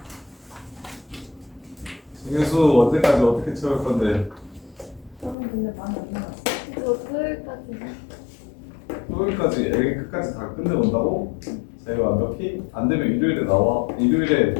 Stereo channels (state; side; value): drops out; right; at 5.4 s